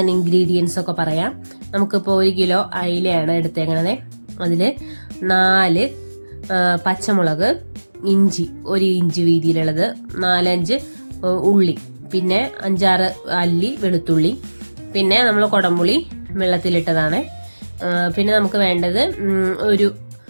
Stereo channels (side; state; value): both; inverted; correlation -1.00